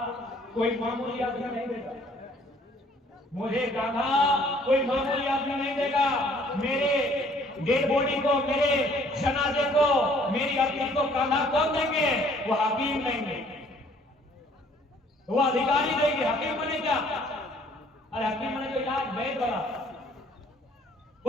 कोई मामूली आदमी नहीं देगा, मुझे कान्हा कोई मामूली आदमी नहीं देगा। मेरे डेड बॉडी को, मेरे जनाजे को, मेरी अर्थी को कान्हा कौन देंगे? वो हकीम देंगे, वो अधिकारी देंगे। हकीम बने क्या? अरे हकीम बने तो इलाज वैद बड़ा,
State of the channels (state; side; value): normal; both; correlation 0.59